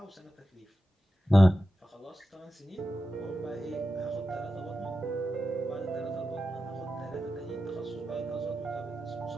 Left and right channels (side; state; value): both; normal; correlation 0.91